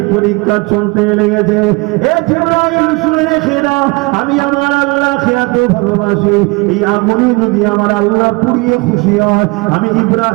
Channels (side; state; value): left; quieter; 26.3 dB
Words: পরীক্ষা চলতে লেগেছে। এ জিবরাইল শুনে রেখে দাও, আমি আমার আল্লাহকে এত ভালোবাসি, এই আগুনে যদি আমার আল্লাহ পুড়িয়ে খুশি হয়, আমি